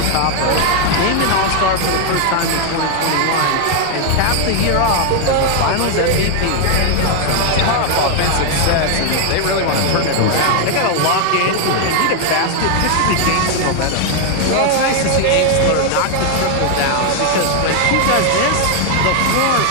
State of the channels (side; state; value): both; different; correlation 0.00